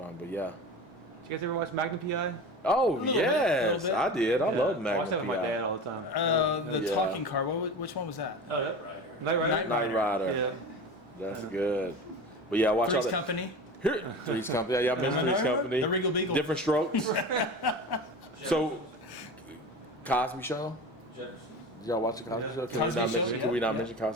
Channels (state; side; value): normal; both; correlation 0.31